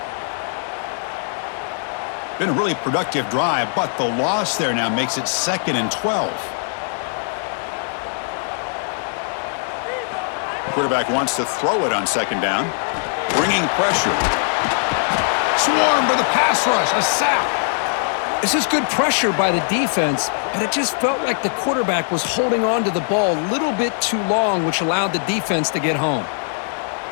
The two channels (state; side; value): silent; right; digital silence